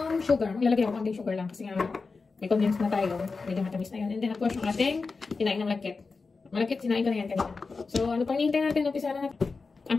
sugar. Maglalagay ako konting sugar lang. Kasi nga, may condense na tayo. Medyo matamis na yun. And then, of course, yung ating kinain ng malagkit. Malagkit, sinain ko na yan kanina. So, ano pang hinihintay natin? Umpisa na natin. Ang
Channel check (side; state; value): right; quieter; 4.3 dB